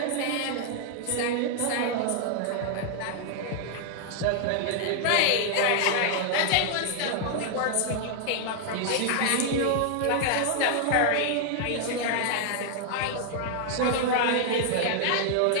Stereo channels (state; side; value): different; both; correlation 0.00